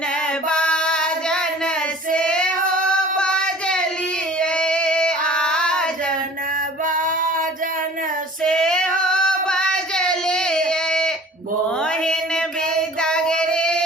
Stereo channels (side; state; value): both; normal; correlation 0.45